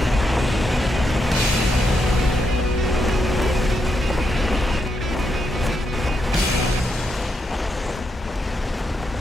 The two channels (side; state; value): both; normal; correlation 0.82